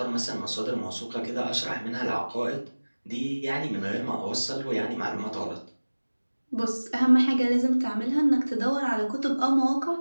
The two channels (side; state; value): both; inverted; correlation -1.00